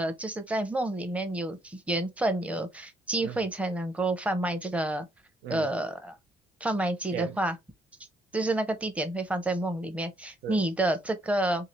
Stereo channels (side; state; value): both; normal; correlation 0.72